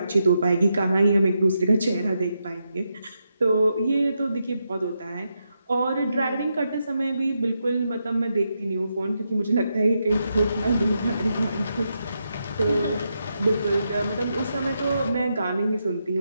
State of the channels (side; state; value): both; inverted; correlation -0.84